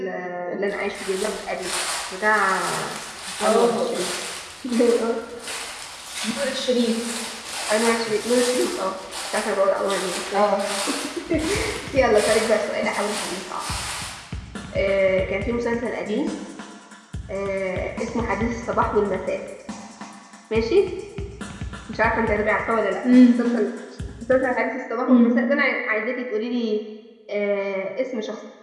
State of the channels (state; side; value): identical; both; correlation 1.00